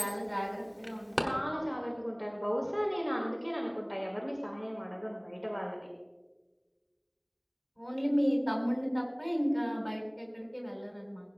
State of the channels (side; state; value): both; identical; correlation 1.00